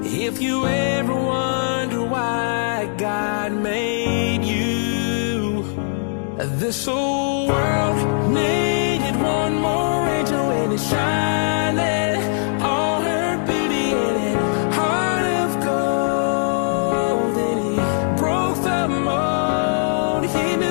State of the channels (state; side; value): silent; right; digital silence